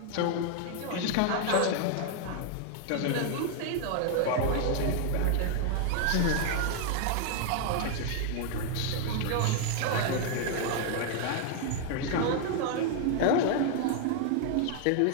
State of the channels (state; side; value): different; both; correlation 0.00